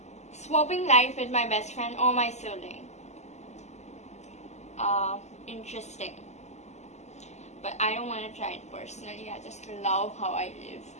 Swapping life with my best friend or my sibling. Interesting, but I don't want to try it personally. I just love how I live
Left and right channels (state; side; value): late; right; 0.33 ms